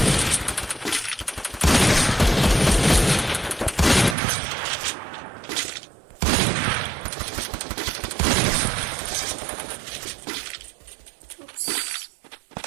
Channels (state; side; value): drops out; left; at 4.2 s